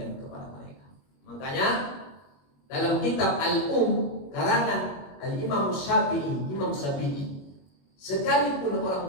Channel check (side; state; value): right; late; 21 ms